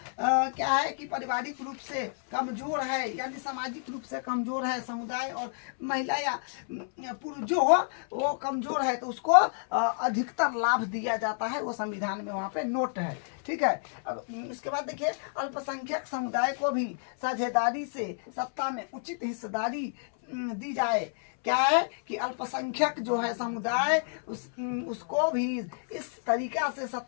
क्या है कि पारिवारिक रूप से कमजोर है, यानी सामाजिक रूप से कमजोर है समुदाय और महिला या पुरुष जो हो वो कमजोर है तो उसको अधिकतर लाभ दिया जाता है, वो संविधान में वहाँ पे नोट है। ठीक है, अब इसके बाद देखिए अल्पसंख्यक समुदाय को भी साझेदारी से सत्ता में उचित हिस्सेदारी दी जाए। क्या है कि अल्पसंख्यक जो है समुदाय उसको भी इस तरीका से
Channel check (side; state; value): right; silent; 58 dB below the other